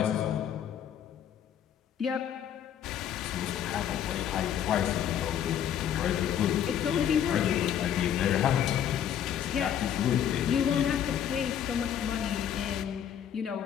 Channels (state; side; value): quieter; right; 9.6 dB